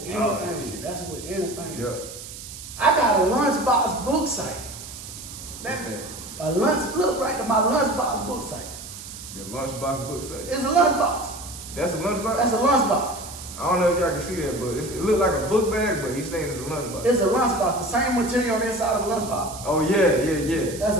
anything. Oh, That's with anything. Yep. I got a lunchbox book site. Okay. A look right to my lunchbox book site. Your lunchbox book site. It's a lunchbox. That's a lunchbox? That's a lunchbox. I don't know if y'all can see that, but it look like a book bag, but he's saying it's a lunchbox. It's a lunchbox. The same material on the inside of a lunchbox. Oh yeah. That's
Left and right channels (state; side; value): noise; right; hiss, 12 dB below the sound